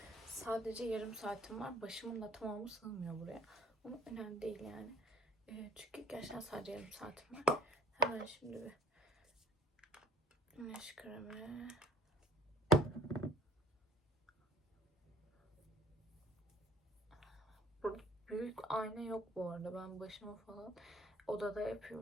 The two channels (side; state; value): both; normal; correlation 0.56